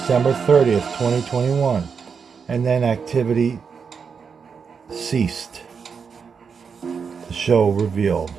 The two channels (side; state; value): left; quieter; 6.0 dB